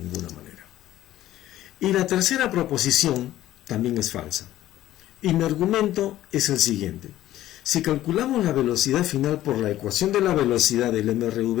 manera. Y la tercera proposición también es falsa. Y mi argumento es el siguiente. Si calculamos la velocidad final por la ecuación de la velocidad del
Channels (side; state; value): right; quieter; 14.0 dB